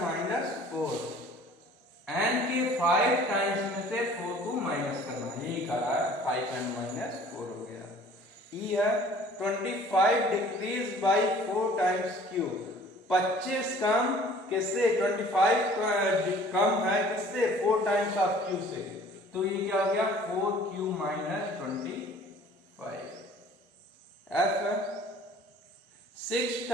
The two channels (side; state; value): both; normal; correlation 0.51